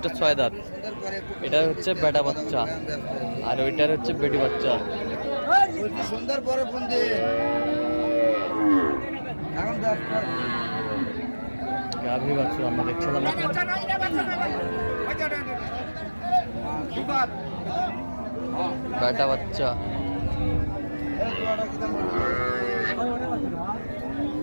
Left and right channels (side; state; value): both; inverted; correlation -1.00